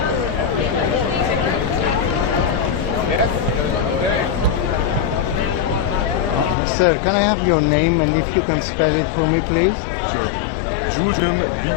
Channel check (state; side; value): drops out; right; at 6.6 s